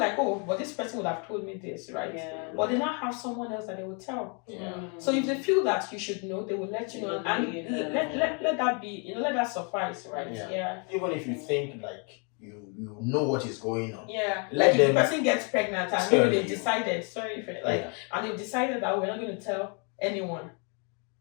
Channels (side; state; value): right; quieter; 36.5 dB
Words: but this person would have told me this, right? But they now have someone else that they will tell. So if they feel that you should know, they will let you know, and let that be, let that suffice, right? Even if you think like you know what is going on. Like if the person gets pregnant and maybe they've decided, and they've decided that we're not going to tell anyone.